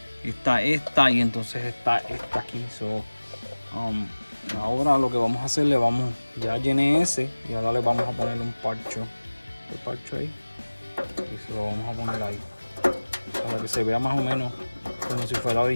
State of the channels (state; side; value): inverted; both; correlation -1.00